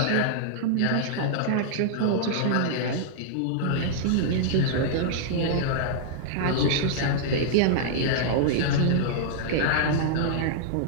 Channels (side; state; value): both; different; correlation -0.01